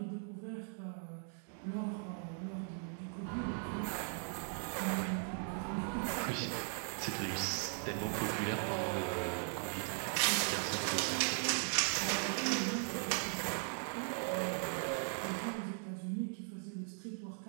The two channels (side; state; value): left; silent; 52 dB below the other